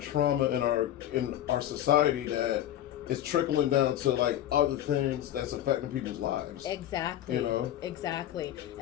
in our society that is trickling down to like other things that's affecting people's lives. Exactly. Exactly.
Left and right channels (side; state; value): right; quieter; 12.2 dB